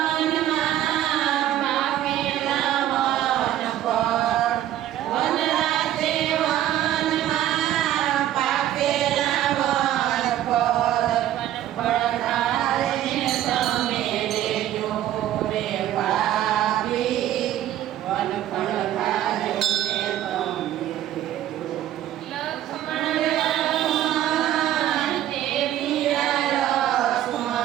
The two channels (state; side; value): quieter; left; 12.4 dB